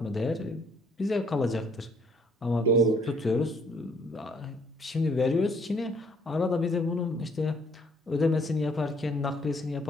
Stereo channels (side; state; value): both; normal; correlation 0.63